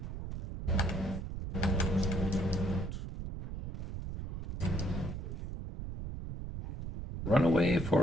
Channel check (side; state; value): right; noise; rumble, 6 dB below the sound